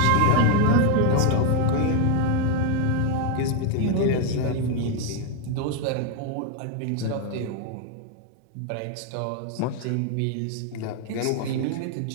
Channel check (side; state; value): both; different; correlation 0.01